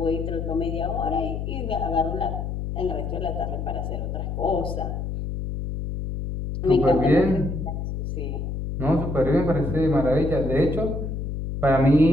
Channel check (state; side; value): noise; left; hum, 4 dB below the sound